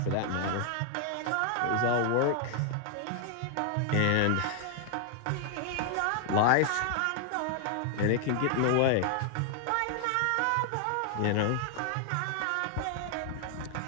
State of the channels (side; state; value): both; different; correlation 0.00